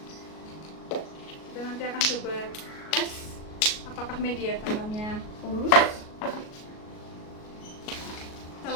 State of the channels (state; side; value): late; right; 38 ms